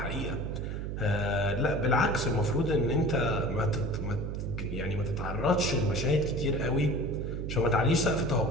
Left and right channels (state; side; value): noise; right; hum, 4 dB below the sound